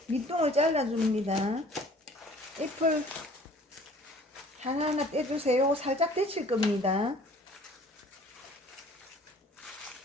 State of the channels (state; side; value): normal; both; correlation 0.51